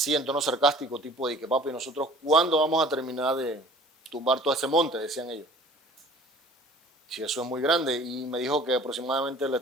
en tono sarcástico, tipo de que papi, nosotros ¿cuándo vamos a terminar de tumbar todo ese monte? Decían ellos. Si eso es muy grande. Y me dijo que aproximadamente le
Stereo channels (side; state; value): both; normal; correlation 0.48